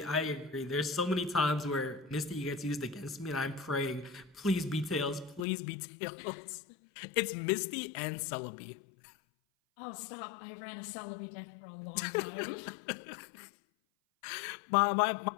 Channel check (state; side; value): drops out; right; at 5.5 s